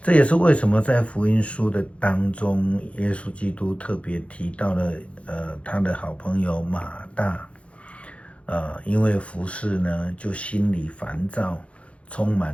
这也是为什么在福音书的当中，耶稣基督特别提到了他的好朋友马大，因为服事呢，就心里烦躁，充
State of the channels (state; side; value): late; right; 0.062 ms